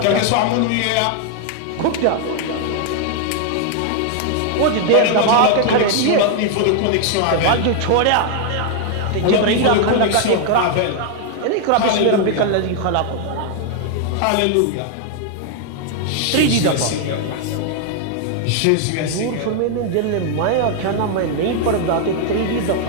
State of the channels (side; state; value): both; different; correlation 0.00